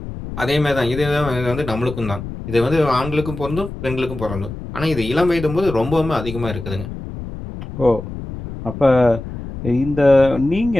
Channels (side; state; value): left; noise; rumble, 9 dB below the sound